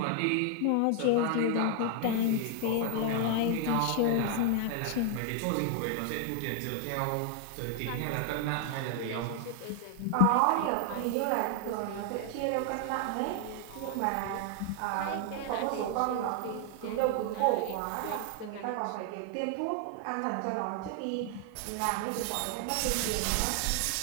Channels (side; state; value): both; different; correlation 0.00